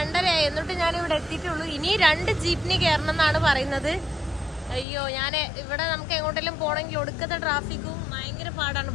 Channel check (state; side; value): drops out; right; at 4.9 s